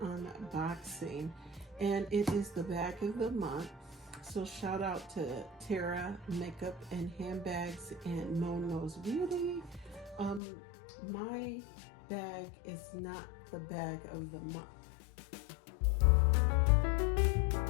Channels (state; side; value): drops out; right; at 10.4 s